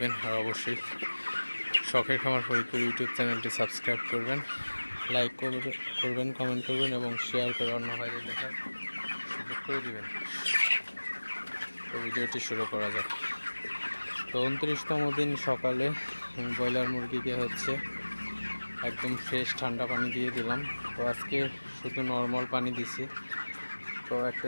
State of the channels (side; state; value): both; inverted; correlation -1.00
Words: আর অবশ্যই শখের খামার ফরিদপুর ইউটিউব চ্যানেলটি সাবস্ক্রাইব করবেন, লাইক করবেন, কমেন্ট করবেন এবং শেয়ার করে অন্য ভাইদের দেখার সুযোগ করে দিবেন। তো ভিডিওটি শুরু করা যাক। তো 29তম দিন সকালে ব্রয়লার মুরগিকে হচ্ছে একদম ফ্রেশ ঠান্ডা পানি দিয়ে দিলাম। তো আজকে শুধু নর্মাল পানি দিছি। তো